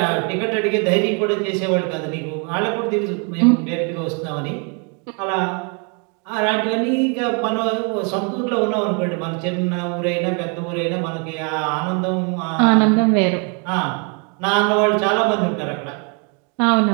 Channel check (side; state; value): left; quieter; 36.2 dB